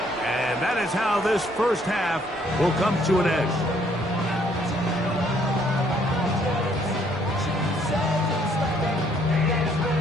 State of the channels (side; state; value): right; noise; hum, 27 dB below the sound